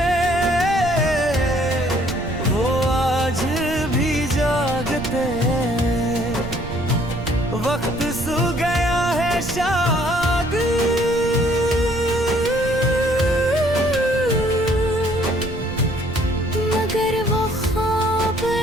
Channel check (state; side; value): noise; right; rumble, 10 dB below the sound